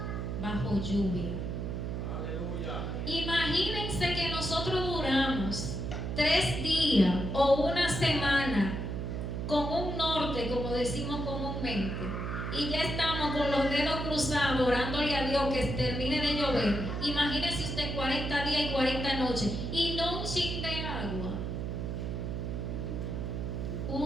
bajo lluvia. Aleluya. Imagínense que nosotros duramos 3 días o una semana con un norte, como decimos comúnmente, y ya estamos con los dedos cruzados orándole a Dios que termine de llover. Imagínese usted 40 días y 40 noches y no un chin de agua,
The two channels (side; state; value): right; noise; hum, 3 dB below the sound